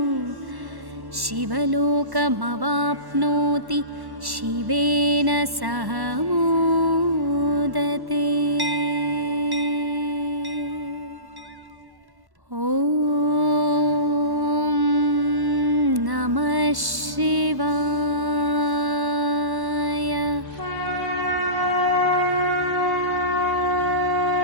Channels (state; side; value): late; left; 1.1 ms